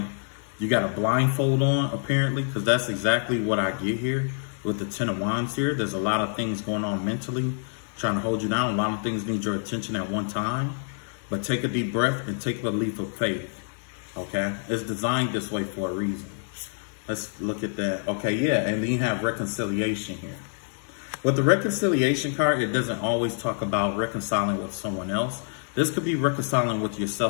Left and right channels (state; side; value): silent; right; 60 dB below the other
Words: you got a blindfold on apparently, because that's exactly what I get here with the 10 of Wands here. There's a lot of things going on mentally, trying to hold you down. A lot of things need your attention at one time, but take a deep breath and take a leap of faith, okay? It's designed this way for a reason. Let's look at that. Okay, yeah, and then you have reconciliation here. With the reconciliation card, it doesn't always talk about reconciling with someone else. This could be reconciling with